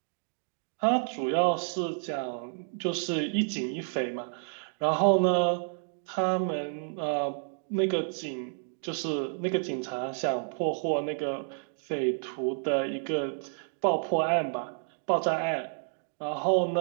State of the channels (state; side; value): silent; left; digital silence